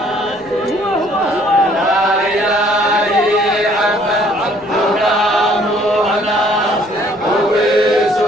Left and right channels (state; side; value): noise; left; rumble, 27 dB below the sound